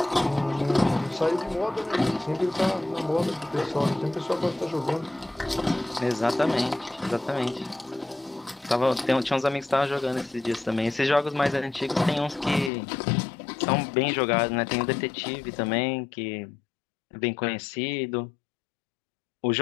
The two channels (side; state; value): right; drops out; at 12.7 s